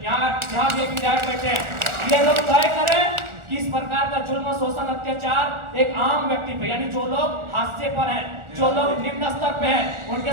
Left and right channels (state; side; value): late; left; 1.4 ms